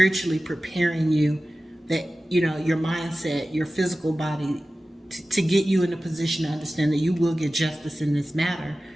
preparing you, that your mindset, your physical body, to get you in a position to understand that you will get justice in this matter,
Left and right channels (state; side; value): normal; both; correlation 0.95